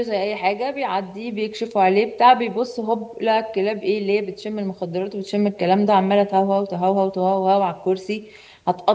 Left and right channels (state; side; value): identical; both; correlation 1.00